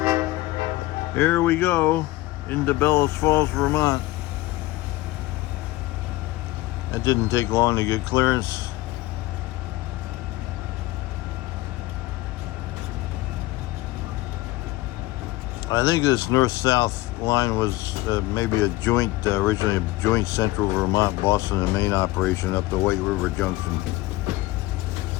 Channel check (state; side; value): quieter; right; 18.6 dB